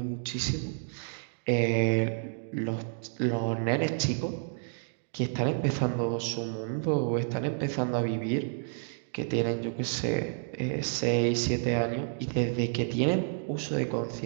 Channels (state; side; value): silent; left; digital silence